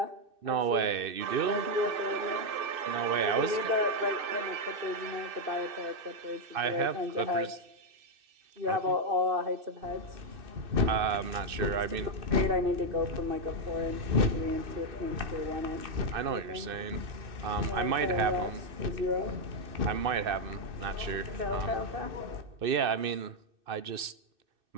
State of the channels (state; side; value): late; left; 2.6 ms